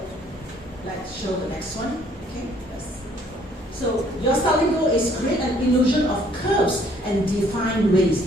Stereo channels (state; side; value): normal; both; correlation 0.62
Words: let's show the next one. Okay? So your styling goal is create an illusion of curves and defined waist.